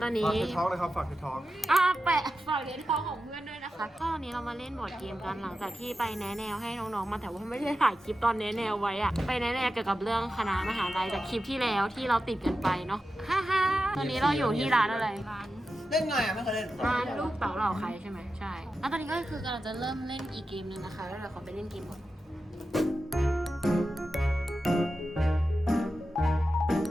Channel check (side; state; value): both; normal; correlation 0.91